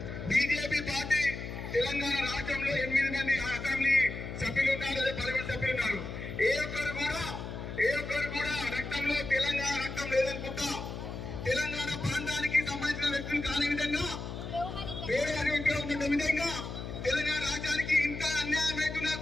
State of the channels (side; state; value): left; noise; hum, 7 dB below the sound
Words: బీజేపీ పార్టీ తెలంగాణ రాష్ట్రంలో 8 మంది అసెంబ్లీ సభ్యులు ఉన్నారు, అదే పార్లమెంట్ సభ్యులు ఉన్నారు. ఏ ఒక్కరు కూడా రక్తంలో తెలంగాణ రక్తం లేదనుకుంటా, తెలంగాణ ప్రాంతానికి సంబంధించిన వ్యక్తులు కాని విధంగా, వేరే వ్యక్తులు ఉన్న విధంగా తెలంగాణ రాజ్యానికి ఇంత అన్యాయం అవుతున్నా